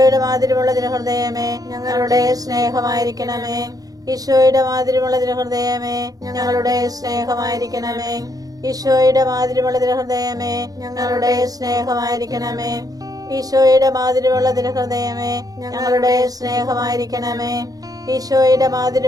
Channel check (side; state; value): left; late; 0.18 ms